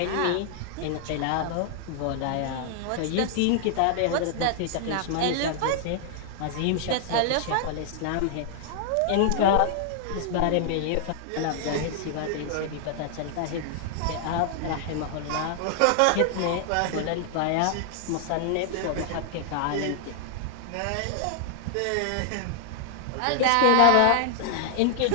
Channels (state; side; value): different; both; correlation -0.01